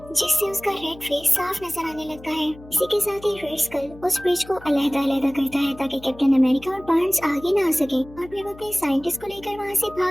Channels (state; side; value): noise; left; hum, 19 dB below the sound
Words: जिससे उसका रेड फेस साफ नजर आने लगता है। इसी के साथ ही रेड स्कल उस ब्रिज को अलग-अलग करता है ताकि कैप्टन अमेरिका और बार्न्स आगे ना आ सके, और फिर वो अपने साइंटिस्ट को लेकर वहाँ से